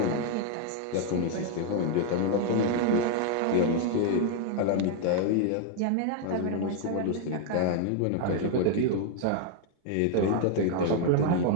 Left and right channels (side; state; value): both; different; correlation 0.00